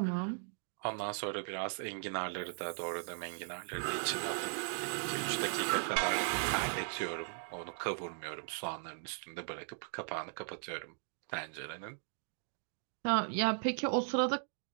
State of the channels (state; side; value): silent; left; digital silence